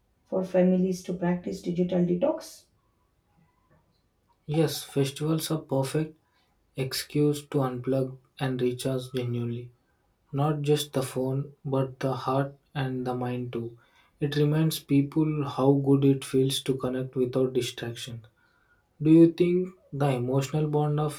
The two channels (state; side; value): identical; both; correlation 1.00